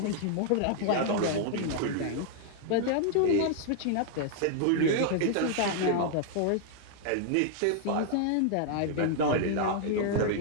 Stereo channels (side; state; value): both; different; correlation -0.01